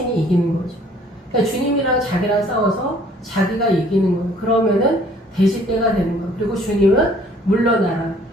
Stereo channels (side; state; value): both; normal; correlation 0.58